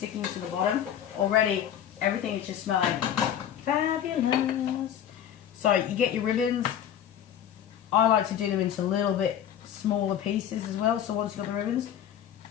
to the bottom. Already everything is just smelling fabulous. So you get your ribbons. I like to do them into a little bit smaller pieces as well. So once you've got the ribbons,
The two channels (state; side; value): quieter; right; 9.9 dB